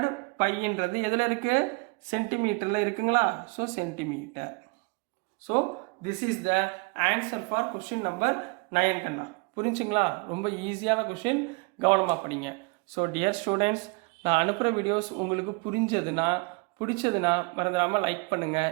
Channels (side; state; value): left; quieter; 30.4 dB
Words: πன்றது எதில் இருக்கு? சென்டிமீட்டரில் இருக்குங்களா? So centimetre. So this is the answer for question number 9 கண்ணா. புரிஞ்சுங்களா? ரொம்ப ஈஸியான கொஸ்டின். கவனமாக படிங்க. ஸோ டியர் ஸ்டூடெண்ட்ஸ், நான் அனுப்புகிற வீடியோஸ் உங்களுக்கு பிடிச்சதுன்னா மறந்துடாமல் லைக் பண்ணுங்கள்,